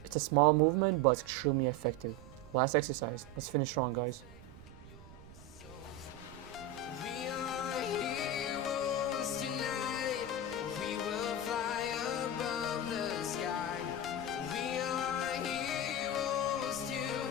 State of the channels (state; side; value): noise; right; rumble, 18 dB below the sound